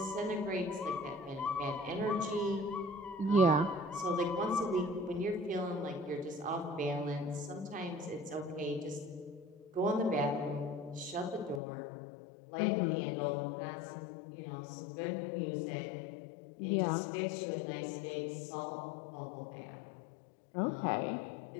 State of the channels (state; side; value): drops out; right; at 11.6 s